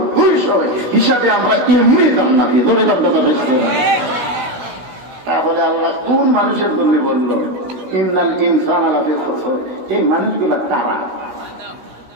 200। হিসাবে আমরা এমনি জান্নাতি ধরে কথা দেখছি। তাহলে আল্লাহ কোন মানুষের জন্য বললো ইন্নাল ইনসানা লাফি খুসর? এই মানুষগুলা কারা?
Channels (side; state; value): left; late; 16 ms